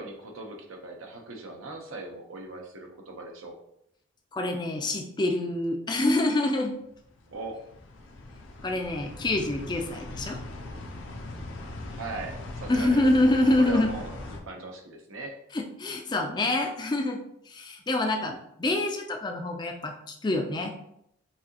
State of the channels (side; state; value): both; normal; correlation 0.68